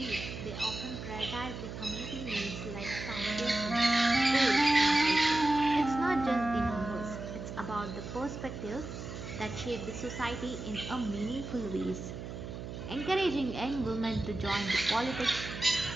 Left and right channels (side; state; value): right; noise; hum, 8 dB below the sound